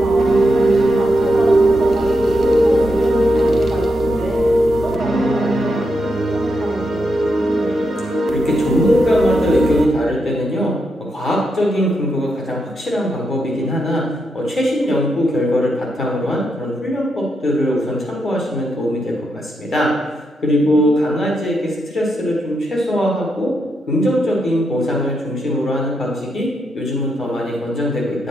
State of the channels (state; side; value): normal; both; correlation 0.83